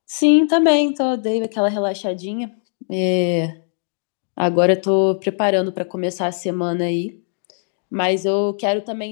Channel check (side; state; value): right; silent; 64 dB below the other